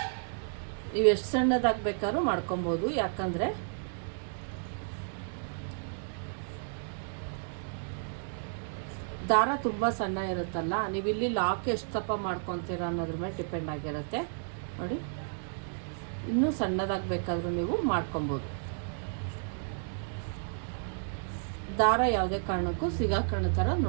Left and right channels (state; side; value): silent; left; digital silence